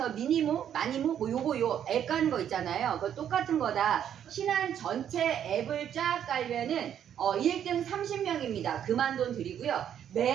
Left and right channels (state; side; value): quieter; left; 9.5 dB